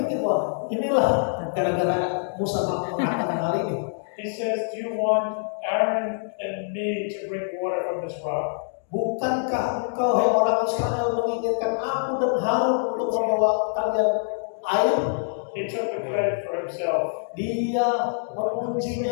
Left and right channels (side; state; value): right; silent; digital silence